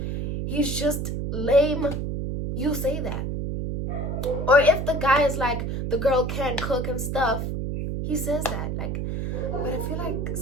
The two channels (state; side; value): noise; right; hum, 2 dB below the sound